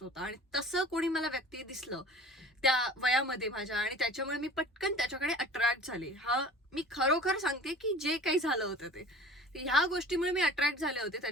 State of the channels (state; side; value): normal; both; correlation 0.43